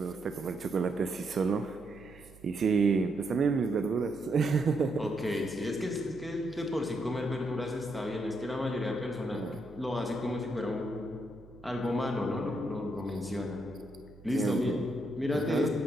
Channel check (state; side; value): noise; right; hum, 21 dB below the sound